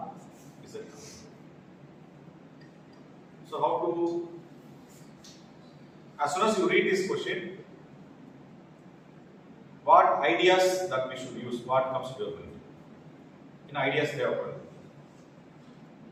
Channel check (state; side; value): identical; both; correlation 1.00